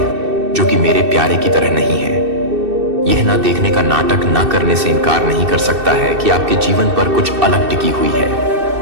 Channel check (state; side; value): late; left; 2.6 ms